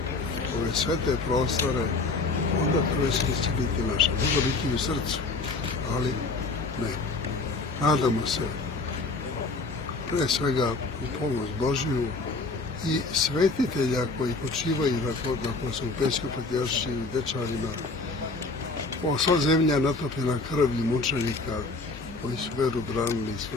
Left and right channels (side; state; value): right; quieter; 3.6 dB